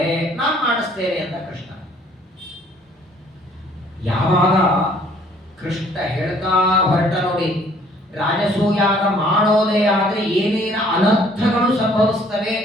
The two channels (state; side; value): normal; both; correlation 0.59